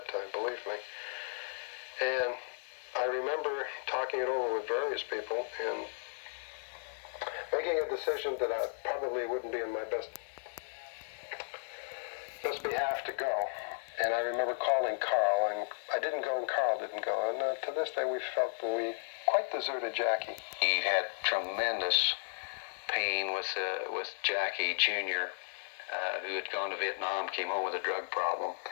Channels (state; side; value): silent; right; digital silence